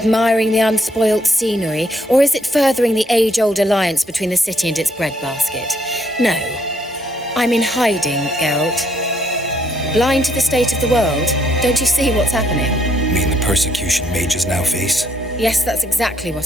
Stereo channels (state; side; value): normal; both; correlation 0.70